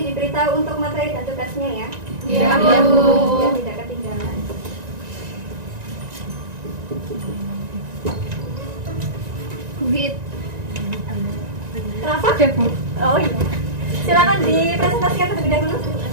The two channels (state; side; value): late; left; 1.9 ms